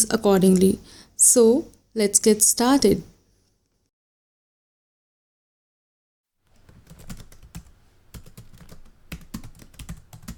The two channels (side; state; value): both; identical; correlation 1.00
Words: accordingly. So let's get started.